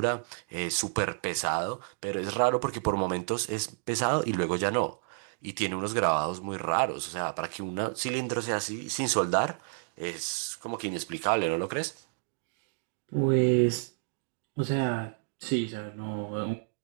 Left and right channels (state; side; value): silent; left; digital silence